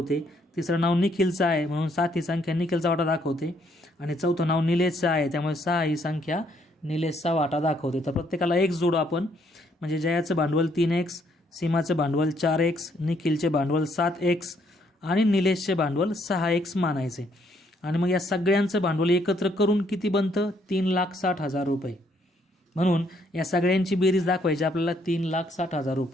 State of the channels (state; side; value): normal; both; correlation 0.69